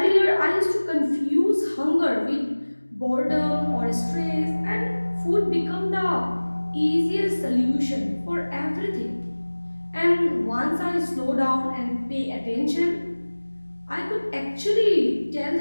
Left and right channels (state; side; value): inverted; both; correlation -1.00